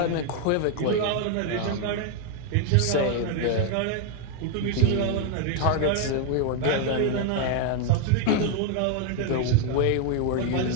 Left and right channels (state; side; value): different; both; correlation 0.01